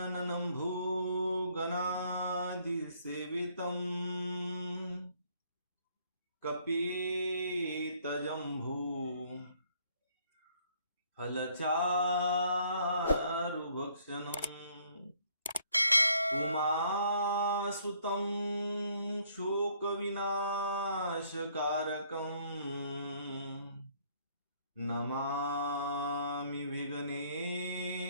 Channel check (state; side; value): inverted; both; correlation -0.64